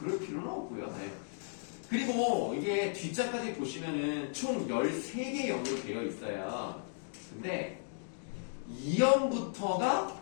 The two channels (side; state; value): right; silent; digital silence